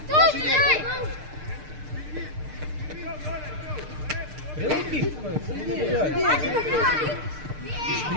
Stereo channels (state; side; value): late; left; 6.6 ms